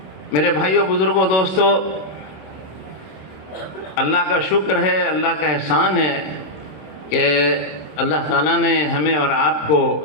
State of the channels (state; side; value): late; right; 26 ms